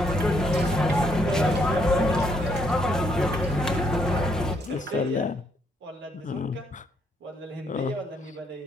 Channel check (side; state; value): both; normal; correlation 0.72